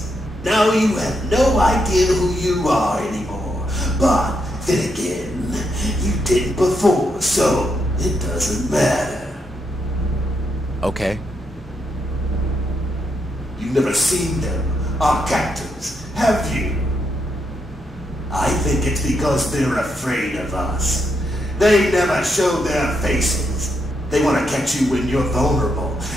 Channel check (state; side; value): normal; both; correlation 0.80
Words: Now you have no idea who you are anymore. But then again, you did before, so it doesn't matter. Okay. You've never seen them, our captors, have you? I think it's because they're afraid of us. They never show their faces. They want to catch you when you're vulnerable.